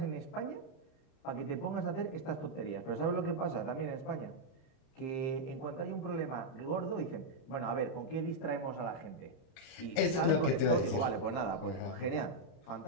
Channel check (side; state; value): right; late; 30 ms